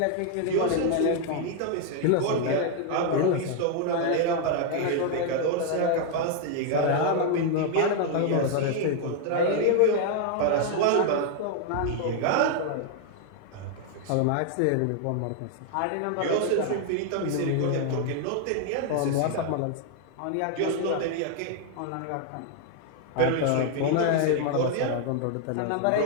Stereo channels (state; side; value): different; both; correlation 0.00